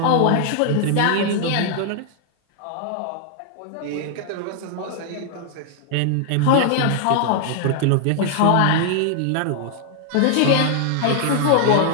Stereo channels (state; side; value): different; both; correlation 0.00